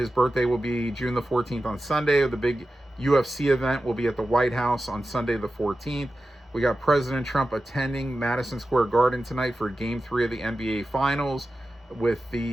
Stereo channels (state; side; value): normal; both; correlation 0.93